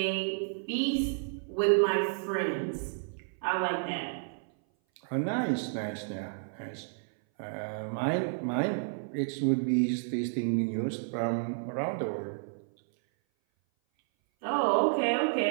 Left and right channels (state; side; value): silent; left; 57 dB below the other